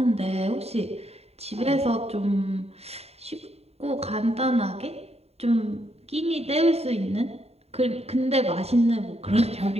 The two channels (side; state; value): left; late; 0.30 ms